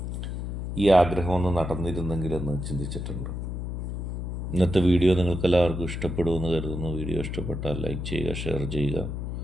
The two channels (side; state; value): left; noise; hum, 4 dB below the sound